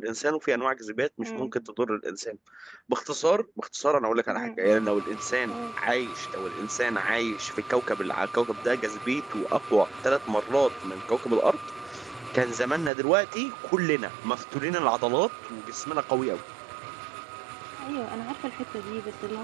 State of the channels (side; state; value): left; drops out; at 12.9 s